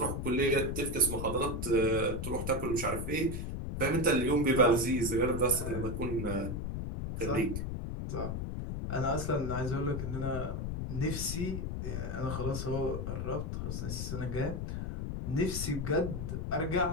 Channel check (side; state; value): left; noise; rumble, 3 dB below the sound